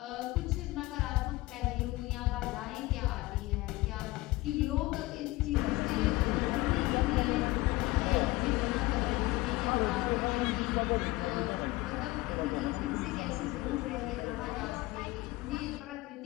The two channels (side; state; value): right; quieter; 19.9 dB